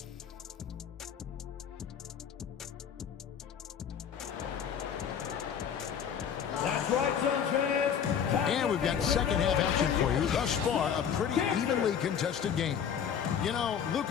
That's right, Suns fans. And we've got second half action for you. Thus far, a pretty evenly contested game. You know,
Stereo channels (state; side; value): quieter; right; 8.1 dB